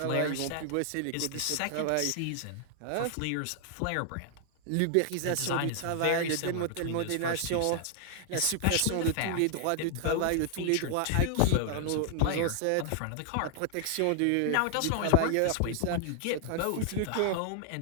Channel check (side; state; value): both; different; correlation 0.00